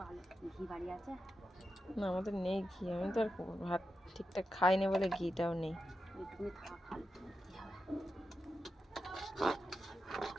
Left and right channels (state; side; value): normal; both; correlation 0.89